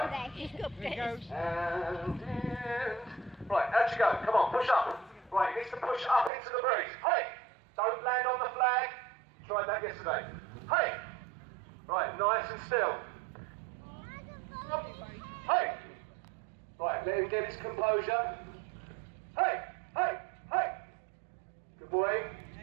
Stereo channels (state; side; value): drops out; left; at 6.3 s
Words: And right, out you go. Come on, push up. Right, he needs to push up into the breeze. Hey! Don't land on the flag. Tried that yesterday. Hey! Right, nice and still. Hey! Right, let him get his composure. Hey! Good boy.